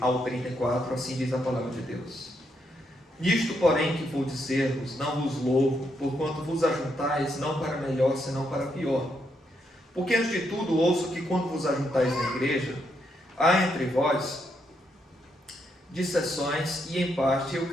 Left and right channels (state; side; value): normal; both; correlation 0.78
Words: 34, assim diz a palavra de Deus. Nisto, porém, que vou dizer-vos, não vos louvo, porquanto vos ajuntais, não para melhor, senão para pior. Porque, antes de tudo, ouço que, quando vos ajuntais na igreja, há entre vós dissensões, e em parte eu